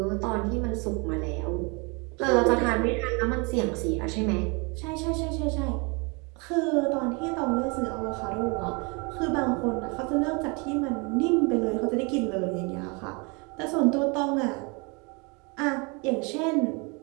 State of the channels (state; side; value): quieter; left; 30.9 dB